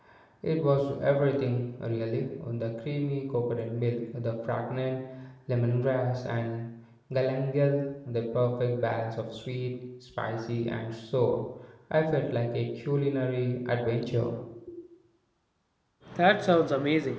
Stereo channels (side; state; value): both; identical; correlation 1.00